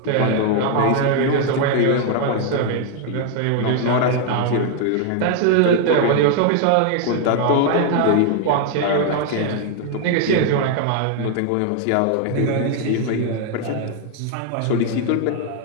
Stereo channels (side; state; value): both; different; correlation 0.00